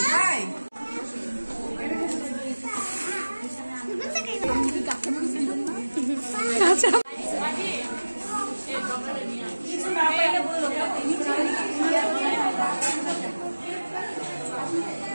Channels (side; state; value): both; inverted; correlation -1.00